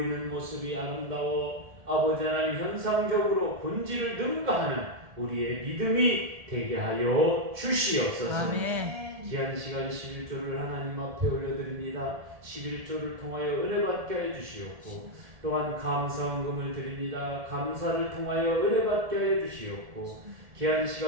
모습이 아름다워 아버지 하나님 현상적으로 본질을 능가하는 우리의 믿음이 되게 하여 주시옵소서. 아멘. 귀한 시간 11조를 하나님 앞에 올려드립니다. 11조를 통하여 은혜 받게 해 주시옵고 또한 감사헌금을 드립니다. 감사를 통하여 은혜 받게 해 주시옵고 귀한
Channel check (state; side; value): late; left; 1.7 ms